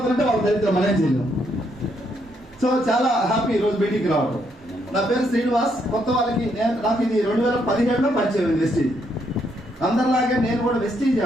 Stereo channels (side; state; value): both; normal; correlation 0.74